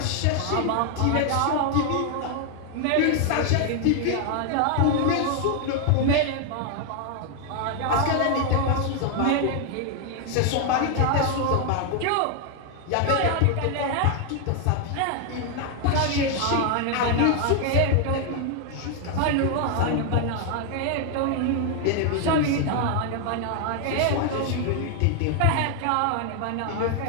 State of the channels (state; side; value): different; both; correlation 0.00